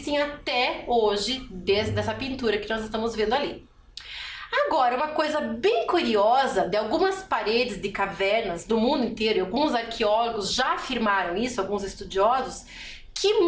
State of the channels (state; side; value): identical; both; correlation 1.00